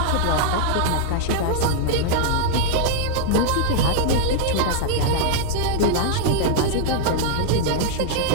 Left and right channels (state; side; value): different; both; correlation -0.01